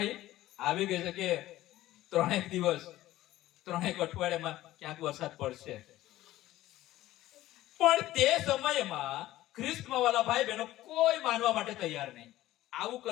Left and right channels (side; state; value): right; quieter; 15.5 dB